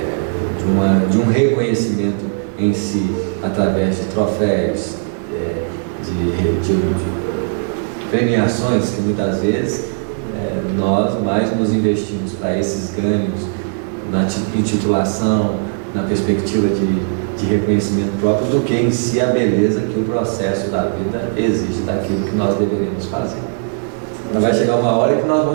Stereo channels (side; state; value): left; silent; 67 dB below the other